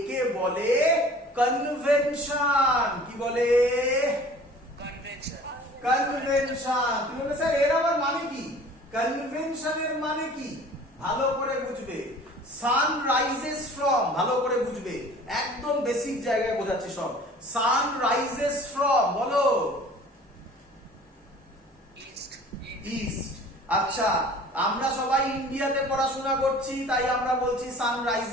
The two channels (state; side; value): normal; both; correlation 0.47